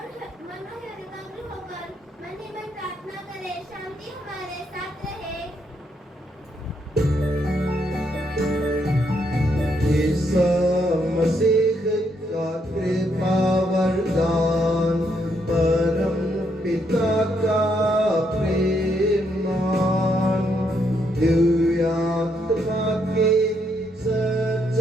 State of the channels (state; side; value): normal; both; correlation 0.75